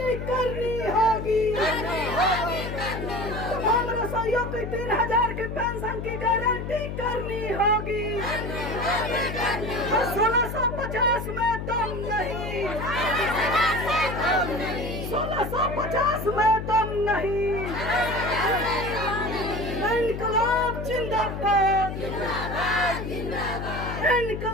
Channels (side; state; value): left; noise; hum, 6 dB below the sound